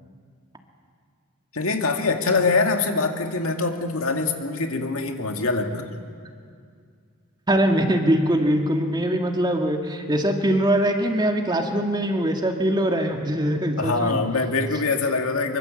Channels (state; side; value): normal; both; correlation 0.34